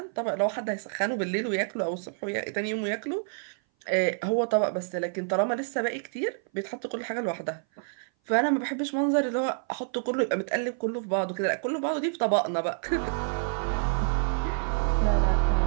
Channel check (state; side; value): silent; left; 57 dB below the other